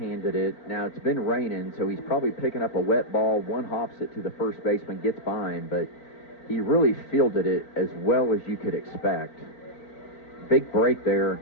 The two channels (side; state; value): right; late; 4.5 ms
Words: it. Now, it's been raining, so he's probably picking up a wet ball. One hops it to the first baseman, gets by him, but he really fielded it as well as you could expect. big break there